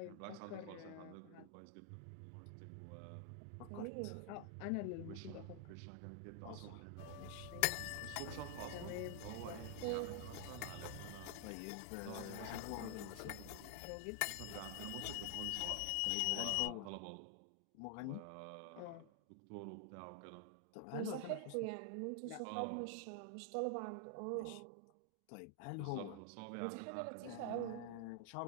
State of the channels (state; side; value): different; both; correlation 0.00